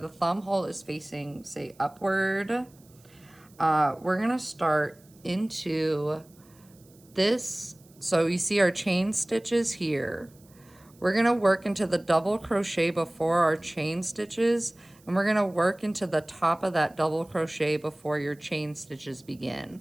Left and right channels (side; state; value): right; noise; hiss, 29 dB below the sound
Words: thumb hole is facing, say, upward, we're going to start into this. So you see our chain stitches here. We're going to work into the double crochet before our chain stitches, and we're going to work into the top of that double crochet before your chain stitches begin.